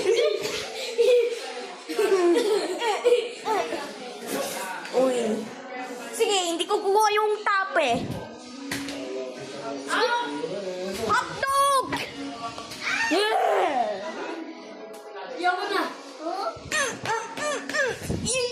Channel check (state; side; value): identical; both; correlation 1.00